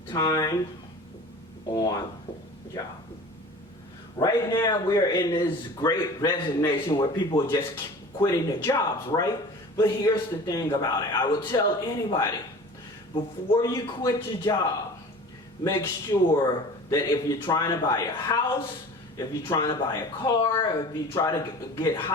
time on job. Right now, we're in this great resignation where people are just quitting their jobs, right? But here's the thing about it. I would tell anybody, before you quit your job, make sure that if you're trying to buy a house, if you're trying to buy a car, if you try to get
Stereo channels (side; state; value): both; normal; correlation 0.40